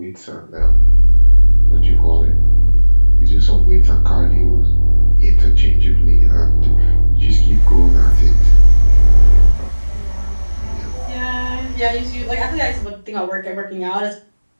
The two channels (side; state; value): both; inverted; correlation -1.00